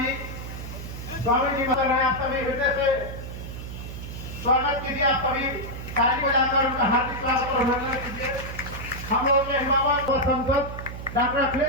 स्वामी जी बता रहे हैं, आप सभी हृदय से स्वागत कीजिए। आप सभी ताली बजाकर उनका हार्दिक स्वागत और अभिनंदन कीजिए। हम लोग के हिमावत और सांसद डॉक्टर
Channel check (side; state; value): right; noise; hum, 9 dB below the sound